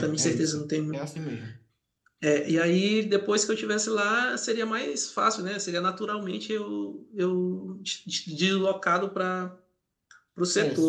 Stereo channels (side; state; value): both; identical; correlation 1.00